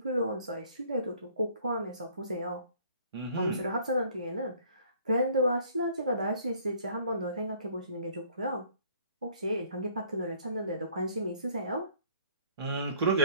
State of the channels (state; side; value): inverted; both; correlation -0.57